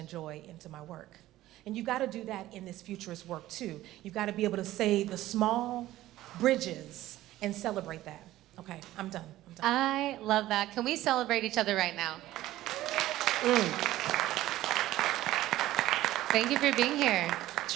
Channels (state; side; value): quieter; left; 15.2 dB